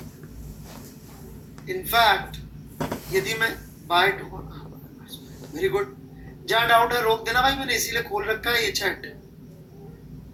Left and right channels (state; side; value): identical; both; correlation 1.00